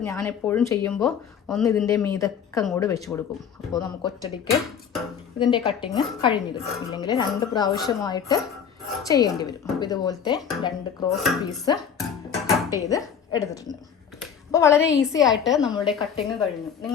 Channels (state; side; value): quieter; right; 7.5 dB